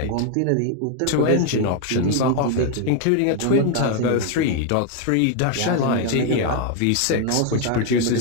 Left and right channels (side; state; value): both; different; correlation 0.01